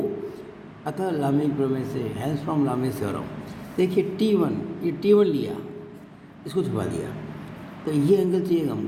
अतः लामी प्रमेय से, हेल्स फ्रॉम लामी थ्योरम। देखिए T1, ये T1 लिया, इसको छुपा दिया, तो ये एंगल चाहिए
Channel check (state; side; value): identical; both; correlation 1.00